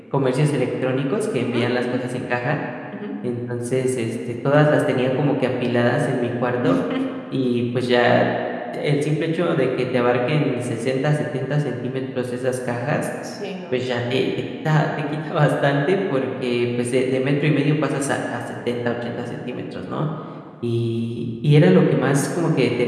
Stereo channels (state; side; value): identical; both; correlation 1.00